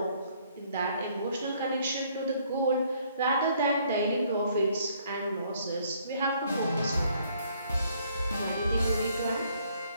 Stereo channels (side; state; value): both; inverted; correlation -0.65